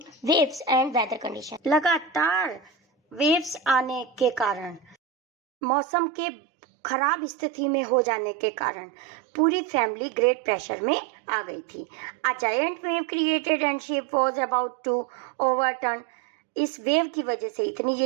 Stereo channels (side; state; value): left; drops out; at 5.0 s